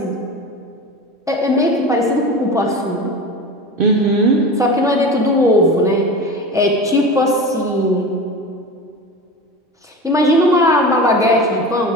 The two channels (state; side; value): normal; both; correlation 0.31